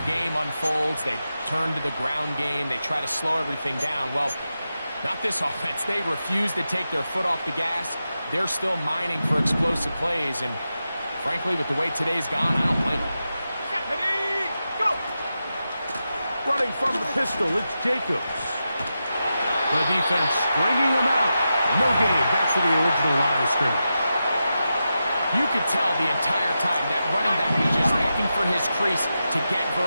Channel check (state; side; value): inverted; both; correlation -0.90